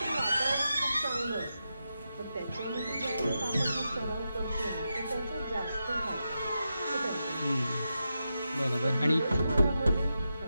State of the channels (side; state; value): both; inverted; correlation -0.88